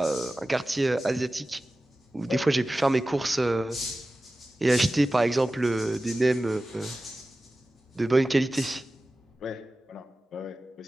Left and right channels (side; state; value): both; normal; correlation 0.96